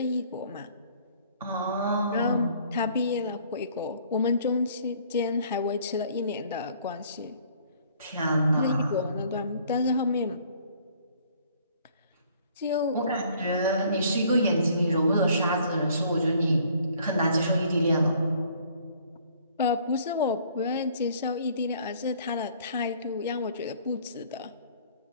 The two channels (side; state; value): both; inverted; correlation -0.58